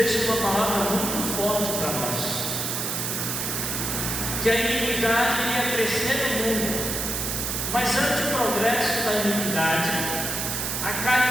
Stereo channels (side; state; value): right; noise; hiss, 2 dB below the sound